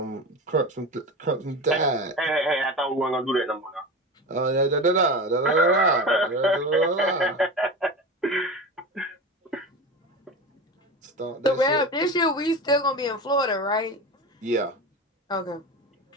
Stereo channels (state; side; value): normal; both; correlation 0.27